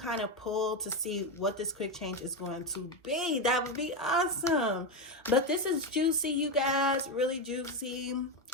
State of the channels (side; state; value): both; normal; correlation 0.11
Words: of pull to see what this quick change is going to be, that would be awesome. But this is juicy, you guys, really juicy.